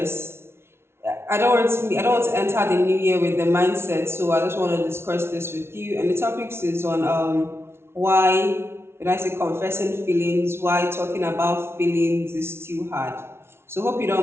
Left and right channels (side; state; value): left; late; 0.12 ms